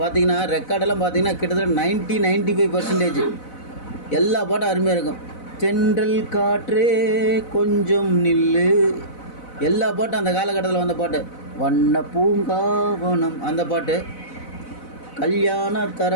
ரெக்கார்டெல்லாம் பார்த்திங்கன்னா கிட்டத்தட்ட 95% எல்லா பாட்டும் அருமையாக இருக்கும். தென்றல் காற்றே கொஞ்சம் நில்லு, எல்லா பாட்டும் அந்த காலகட்டத்தில் வந்த பாட்டு. வண்ண பூங்காவனம் அந்த பாட்டு. கல்யாண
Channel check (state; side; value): late; right; 4.0 ms